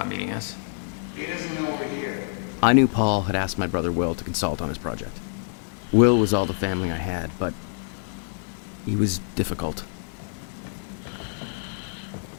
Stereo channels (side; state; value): right; silent; 61 dB below the other